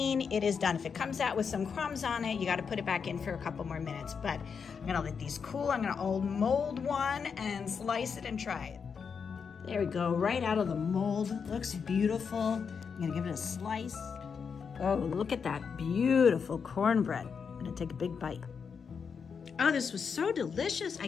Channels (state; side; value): quieter; right; 6.2 dB